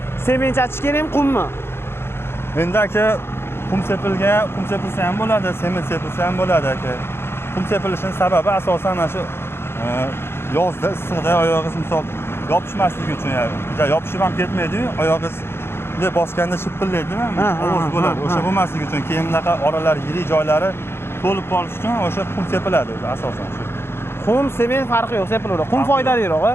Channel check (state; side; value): late; right; 0.12 ms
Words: sement achish kerakmi, qummi? Endi aka qum sepilsa ham bo'ladi, sement sepilsa ham bo'ladi aka. Qum sepilishining sababi asosan mana shu yozda issiqda oyog'ingiz misol yopishmasligi uchun, yopishib ham ketmaydi-yu, oyog'ingiz bunday bosganda shipillaydi-mi? Ovoz bo'ladi. O'sha bo'lmasligi uchun keyin bunaqa oralar yirik joylari to'lib qolish uchun o'sha qum sepiladi o'zi asosan shu. Qum, sement farqi yo'q, sepilaveradi. Qum foydaliroq-a?